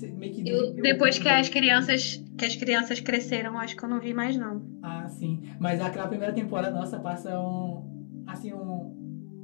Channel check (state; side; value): silent; right; digital silence